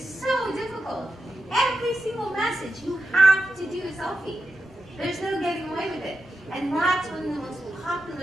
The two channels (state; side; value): normal; both; correlation 0.89